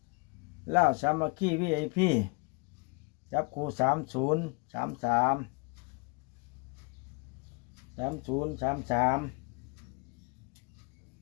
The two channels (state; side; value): quieter; right; 30.6 dB